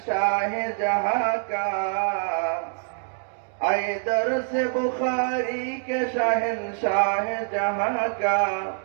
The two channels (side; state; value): left; silent; digital silence